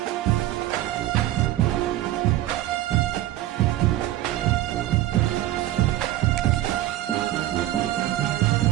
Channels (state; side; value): quieter; left; 14.8 dB